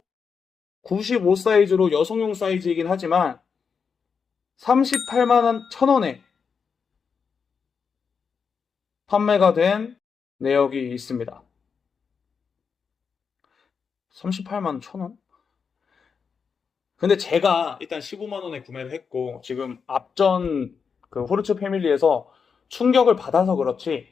95 사이즈로 여성용 사이즈이긴 하지만 38만 1,000원에 판매가 된 내역이 있습니다. 38만 1,000원? 근데 제가 일단 15만 원에 구매를 했고 지금 앞전 그 호르츠 패밀리에서 충격을 받아서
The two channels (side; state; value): right; quieter; 6.0 dB